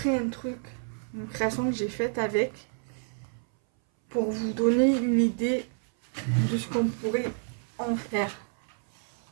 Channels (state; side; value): silent; left; 59 dB below the other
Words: un truc, une création que j'ai faite avec, pour vous donner une idée de ce qu'on pourrait en faire.